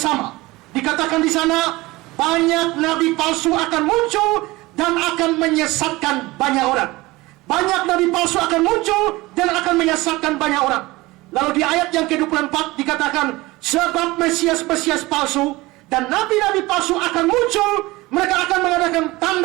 Dikatakan di sana, banyak nabi palsu akan muncul dan akan menyesatkan banyak orang. Banyak nabi palsu akan muncul dan akan menyesatkan banyak orang. Lalu di ayat yang ke-24 dikatakan, sebab Mesias-Mesias palsu dan nabi-nabi palsu akan muncul. Mereka akan mengadakan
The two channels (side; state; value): left; quieter; 20.7 dB